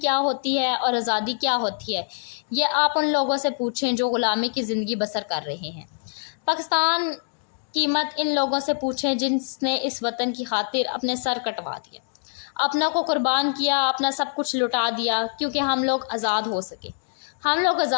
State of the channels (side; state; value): right; silent; digital silence